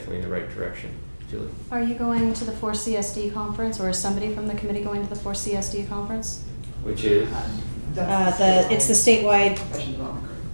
in the right direction. Julie? Are you going to the 4CSD conference, or is somebody from the committee going to the 4CSD conference? Which is? It's the statewide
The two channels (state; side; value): inverted; both; correlation -1.00